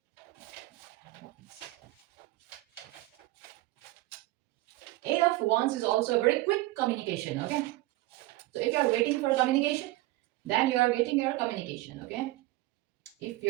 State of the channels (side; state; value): left; quieter; 18.6 dB